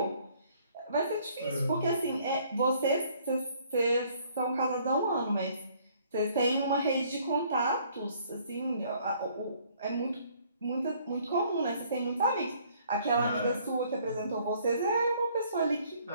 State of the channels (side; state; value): both; inverted; correlation -0.61